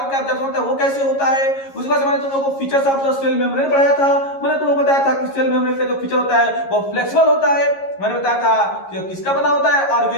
का एब्जॉर्प्शन होता है वो कैसे होता है। उसके बाद मैंने तुम लोगों को features of the cell membrane पढ़ाया था। मैंने तुम लोगों को बताया था कि सेल मेम्ब्रेन का जो फीचर होता है वो फ्लेक्सिबल होता है। मैंने बताया था कि किसका बना होता है,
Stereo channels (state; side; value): late; right; 11 ms